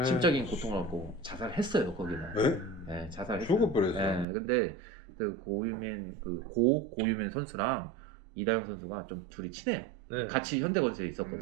심적인 고통을 받고 자살했어요 거기는. 에? 네, 자살했어요. 죽어버렸어. 네, 근데 그 고유민 고유민 선수랑 이다영 선수가 좀 둘이 친해요. 네. 같이 현대건설에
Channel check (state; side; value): drops out; left; at 4.2 s